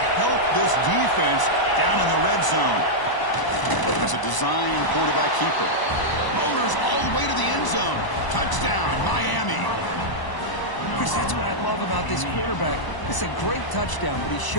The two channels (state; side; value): late; right; 1.0 ms